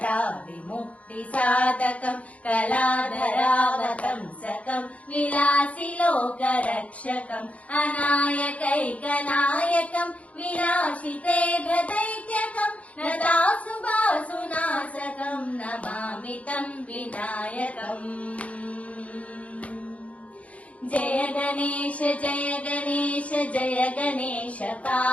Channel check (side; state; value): right; late; 0.066 ms